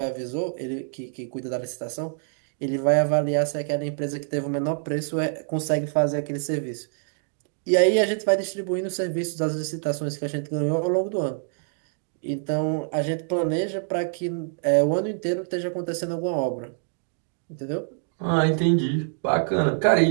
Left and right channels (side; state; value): left; silent; digital silence